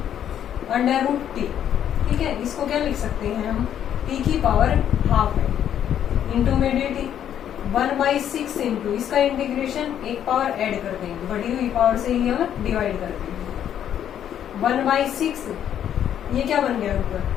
अंडर रूट t। ठीक है, इसको क्या लिख सकते हैं हम, t की पावर हाफ है इंटू में dt, 1/6 इंटू इसका इंटीग्रेशन एक पावर ऐड कर देंगे, बढ़ी हुई पावर से ही हम डिवाइड कर देंगे, 1/6 ये क्या बन गया ऊपर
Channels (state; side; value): quieter; right; 9.9 dB